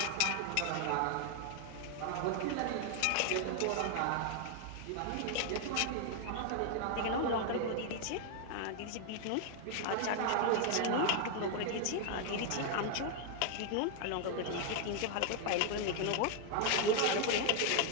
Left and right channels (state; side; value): different; both; correlation 0.00